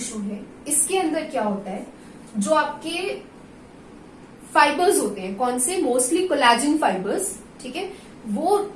है इसके अंदर क्या होता है, जो आपके फाइबर्स होते हैं, कौन से, मोस्टली कोलेजन फाइबर्स, ठीक है, वो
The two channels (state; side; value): identical; both; correlation 1.00